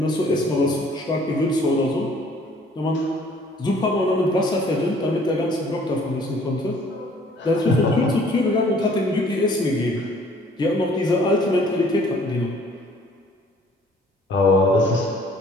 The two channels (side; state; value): both; normal; correlation 0.57